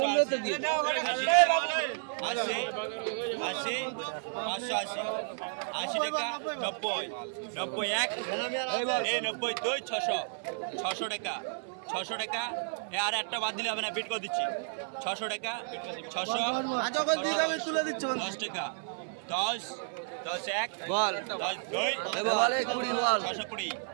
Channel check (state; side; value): silent; left; 57 dB below the other